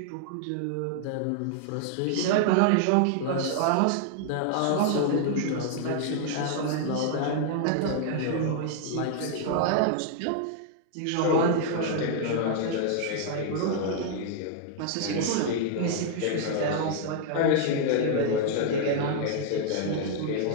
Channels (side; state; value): both; different; correlation 0.00